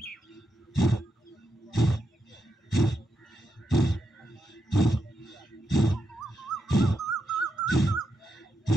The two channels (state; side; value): normal; both; correlation 0.84